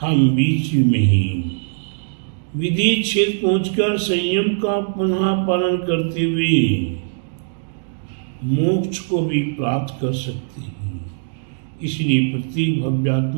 बीच में ही विधि क्षेत्र पहुंचकर संयम का पुनः पालन करते हुए मोक्ष को भी प्राप्त कर सकते हैं। इसलिए प्रत्येक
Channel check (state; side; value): silent; left; digital silence